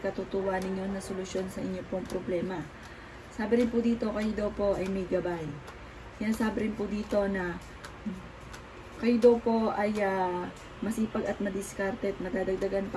ninyo na solusyon sa inyong pong problema. Sabi rin po dito, kayo daw po ay may gabay. Sabi rin po dito na kayo daw po ay masipag at madiskarte at madadagdagan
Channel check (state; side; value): identical; both; correlation 1.00